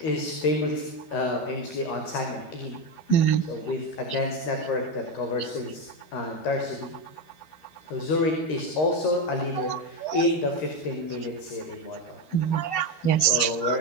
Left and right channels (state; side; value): late; right; 13 ms